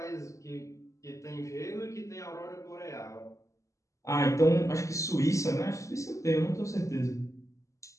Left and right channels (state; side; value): late; right; 0.15 ms